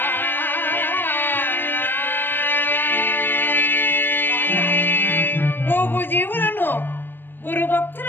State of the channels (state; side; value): late; right; 0.096 ms